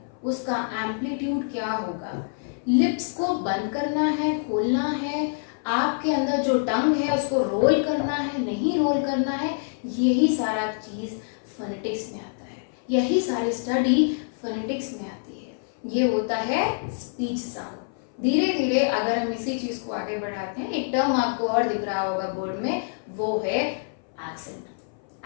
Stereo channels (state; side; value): silent; right; 58 dB below the other